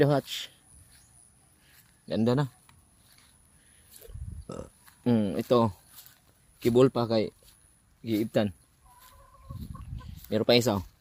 hatch. Ganda na. Ito. Kibol pa kay giibtan. Meron pa isa.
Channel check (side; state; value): both; identical; correlation 1.00